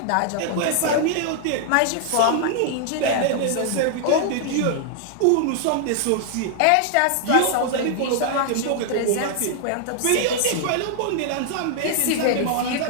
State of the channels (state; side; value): different; both; correlation -0.01